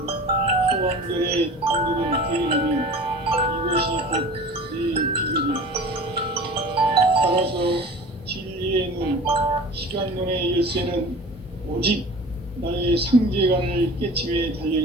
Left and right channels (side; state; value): both; normal; correlation 0.40